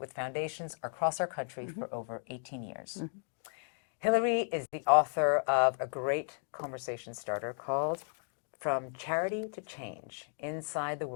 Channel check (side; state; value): right; silent; 55 dB below the other